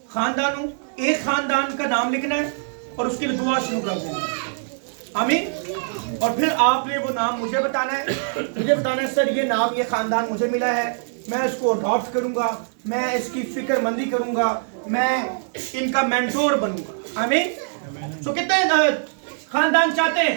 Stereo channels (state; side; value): silent; left; 63 dB below the other